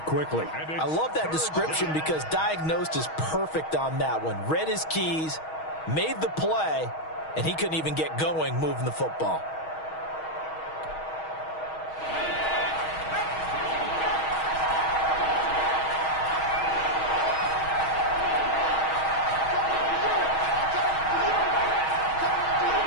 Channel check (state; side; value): late; right; 6.3 ms